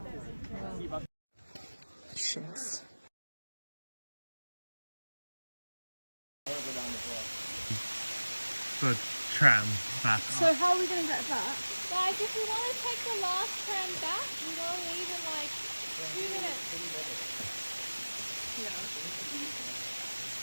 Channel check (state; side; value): inverted; both; correlation -1.00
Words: Shits. The tram back. So how are we going to get back? Guys, if we want to take the last tram back, we will leave in like 2 minutes.